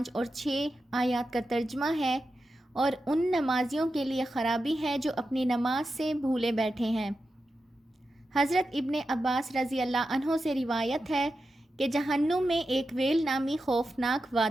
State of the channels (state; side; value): normal; both; correlation 0.90